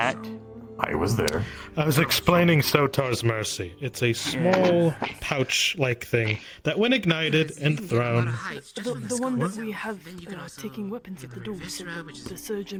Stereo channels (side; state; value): both; identical; correlation 1.00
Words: I was there. I was explaining Sotar's Mercy. It's a small pouch-like thing that, when ignited and thrown, The one that we have taking weapons at the door. So the